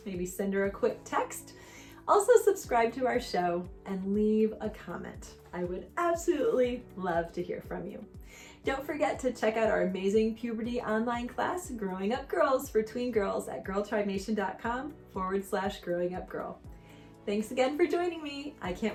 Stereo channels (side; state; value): both; identical; correlation 1.00